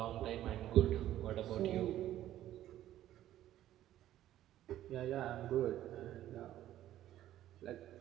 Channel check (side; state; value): left; quieter; 12.9 dB